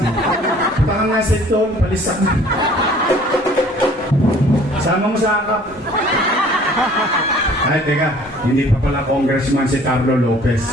Baka nga sa ito, palisak na. Sama mo sa akap. Ay, teka, hindi pa pala congressman si Carlo Lopez.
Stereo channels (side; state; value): both; normal; correlation 0.53